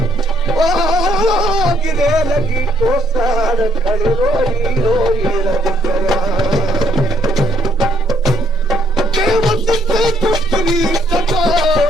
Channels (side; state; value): both; normal; correlation 0.69